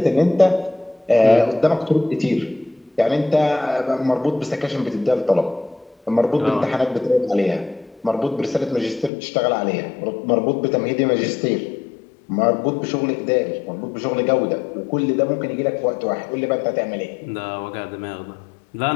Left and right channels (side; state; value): right; drops out; at 9.1 s